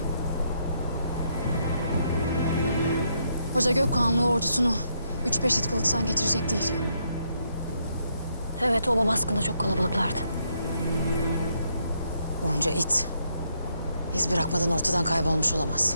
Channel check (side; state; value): both; inverted; correlation -0.76